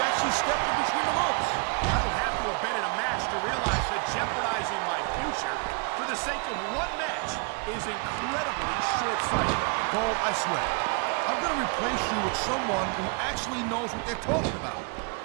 actually stepped in between the ropes. I don't have to have been in a match to realize that jeopardizing my future for the sake of one match is incredibly short-sighted. Cole, I swear, I'm gonna replace you with someone who actually knows what they're talking about.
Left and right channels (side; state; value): left; quieter; 35.5 dB